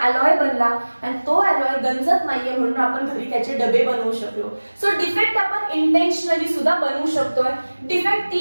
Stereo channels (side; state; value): both; inverted; correlation -1.00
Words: अलॉय बनला आणि तो अलॉय गंजत नाहीये म्हणून आपण घरी त्याचे डबे बनवू शकलो. सो डिफेक्ट आपण इंटेन्शनली सुद्धा बनवू शकतोय. डिफेक्ट